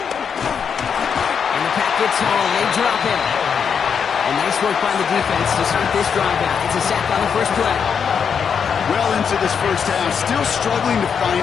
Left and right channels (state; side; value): quieter; right; 6.9 dB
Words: And the pack gets home. They drop him. And nice work by the defense to start this drive out. It's a sack on the first play. Well into this first half, still struggling to